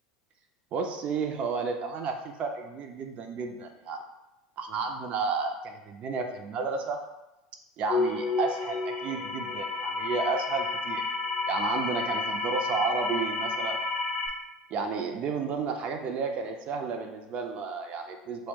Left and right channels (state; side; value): normal; both; correlation 0.37